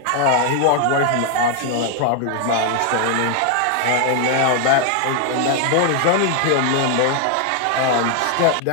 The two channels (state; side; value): different; both; correlation 0.00